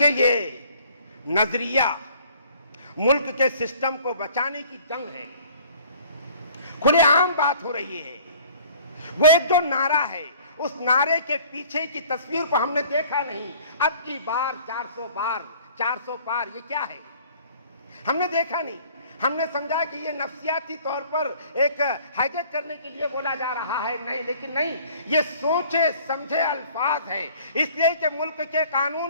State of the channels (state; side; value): inverted; both; correlation -0.52